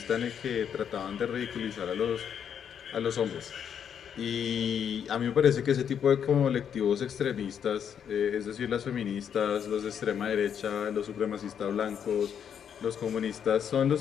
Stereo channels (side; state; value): right; quieter; 8.2 dB